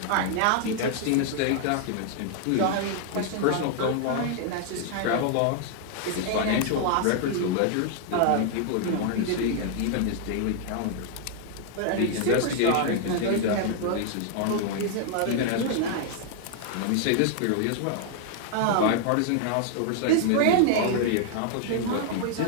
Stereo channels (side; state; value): both; different; correlation 0.00